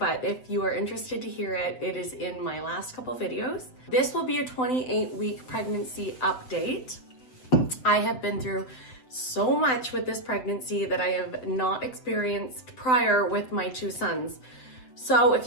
if you are interested to hear it, it is in my last couple videos. This will be a 28-week pregnancy update. I have been through so much with this pregnancy that I have not experienced prior with my two sons. So if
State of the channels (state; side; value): late; right; 7.9 ms